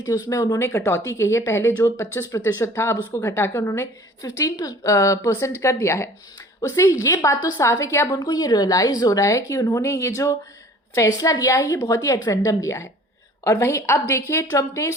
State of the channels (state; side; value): normal; both; correlation 0.48